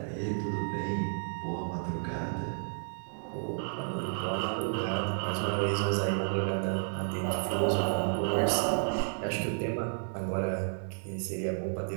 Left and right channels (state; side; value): silent; left; digital silence